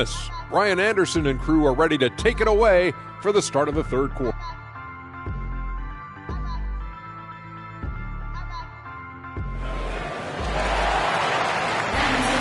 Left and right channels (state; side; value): identical; both; correlation 1.00